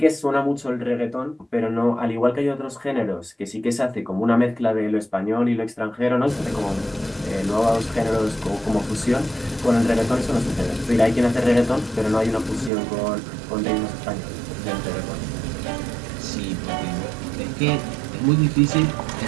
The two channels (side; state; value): left; drops out; at 12.7 s